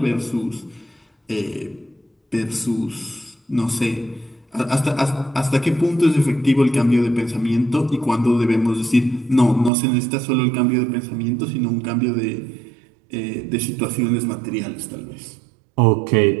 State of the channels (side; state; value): left; drops out; at 9.7 s